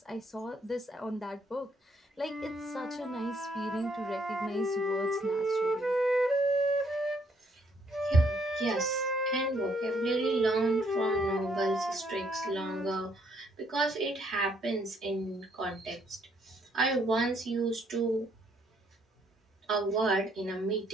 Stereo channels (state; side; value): normal; both; correlation 0.69